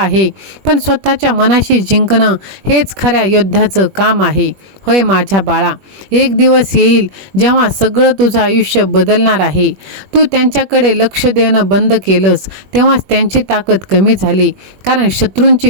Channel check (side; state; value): left; late; 21 ms